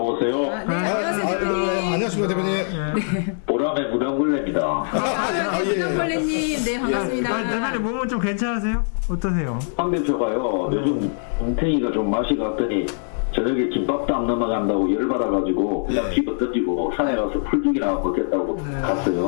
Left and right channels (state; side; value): silent; right; digital silence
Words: 네, 안녕하세요 대표님. 안녕하십니까 대표님. 보람의 무당굴레입니다. 부장벌레님, 네 반갑습니다. 대표님 몸은 좀 괜찮으세요? 어떠세요? 황대표가요. 요즘 웅탱이가 좀 맛이 갔더니 저녁에 김밥도 안 넘어간다고 열받아가지고 그냥 피부 던지고 산에 가서 풀죽이나 먹겠다고